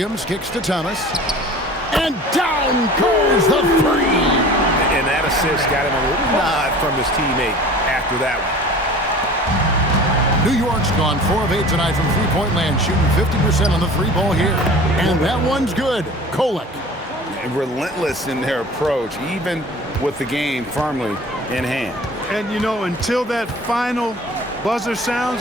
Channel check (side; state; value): both; normal; correlation 0.42